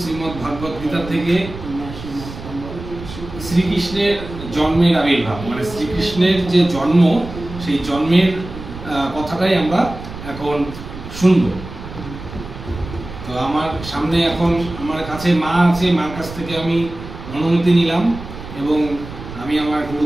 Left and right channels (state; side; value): noise; right; rumble, 12 dB below the sound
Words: শ্রীমদ্ ভাগবত গীতা থেকে শ্রীকৃষ্ণের জন্মের আবির্ভাব, মানে শ্রীকৃষ্ণের যে জন্ম, সেই জন্মের কথাটাই আমরা এখন শুনব। তো আমার সামনে এখন আমার কাছে মা আছে, মার কাছ থেকে আমি অনুমতি নিলাম এবং আমি আমার